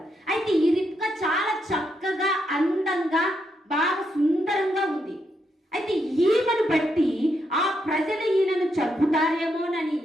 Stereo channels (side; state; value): both; normal; correlation 0.80